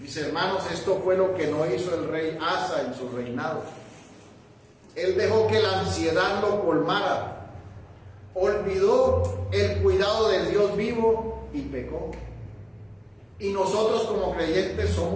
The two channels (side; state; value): both; identical; correlation 1.00